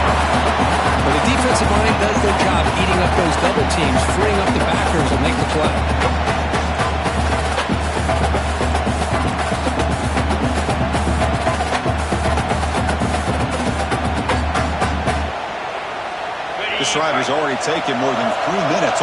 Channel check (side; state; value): both; identical; correlation 1.00